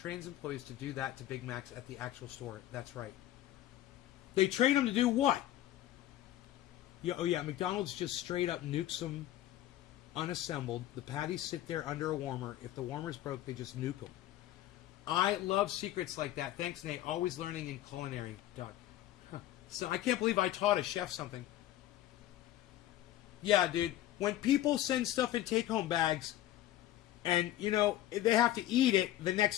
employees to do that to Big Macs at the actual store. That's right. They train them to do what? Yeah, oh, yeah, McDonald's just straight up nukes them unassembled. The patties sit there under a warmer. If the warmer's broke, they just nuke them. I love secrets like that. Thanks, Nate. Always learning in culinary, Doc. Huh. So I can't believe I taught a chef something. Yeah, dude. When people send stuff in take-home bags, and, you know, they have to eat it the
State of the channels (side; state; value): right; quieter; 13.8 dB